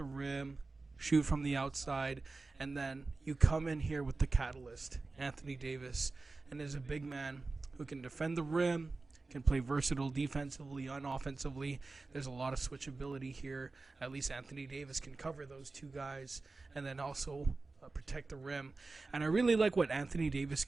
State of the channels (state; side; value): quieter; left; 3.6 dB